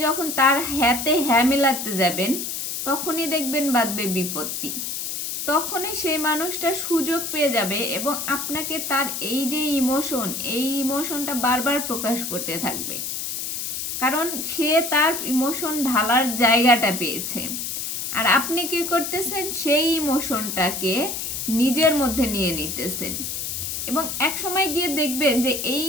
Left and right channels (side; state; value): left; noise; hiss, 4 dB below the sound